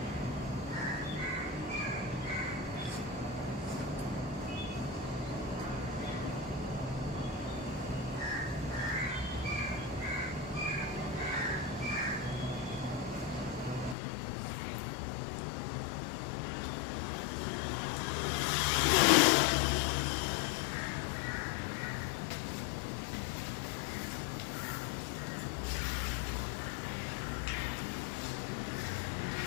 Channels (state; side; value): drops out; right; at 14.0 s